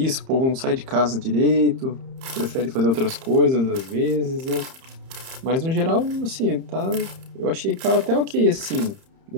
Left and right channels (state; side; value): late; left; 31 ms